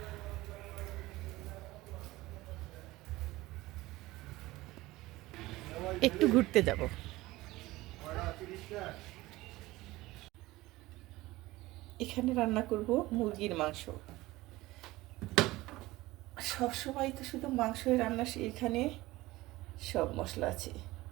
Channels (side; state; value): left; quieter; 18.9 dB